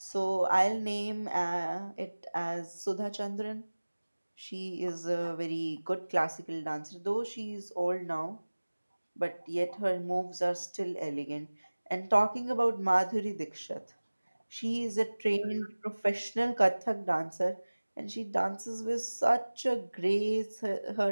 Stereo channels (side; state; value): both; inverted; correlation -1.00